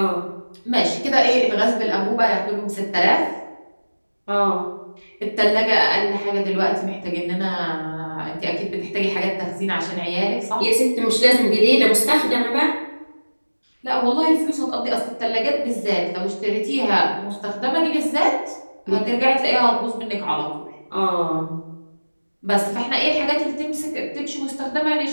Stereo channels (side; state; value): both; inverted; correlation -1.00